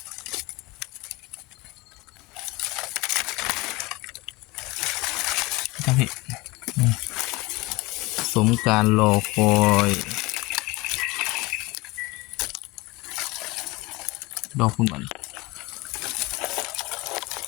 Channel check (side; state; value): right; quieter; 23.0 dB